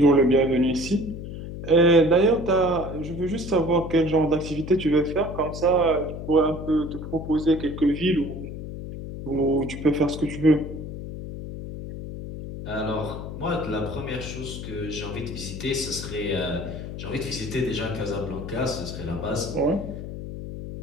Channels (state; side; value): noise; left; hum, 8 dB below the sound